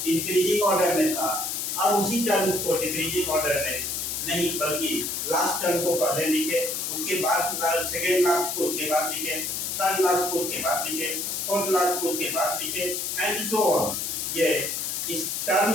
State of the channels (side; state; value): left; noise; hiss, 2 dB below the sound